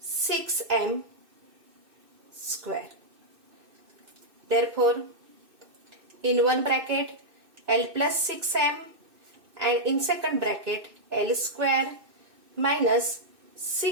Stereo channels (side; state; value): left; late; 2.6 ms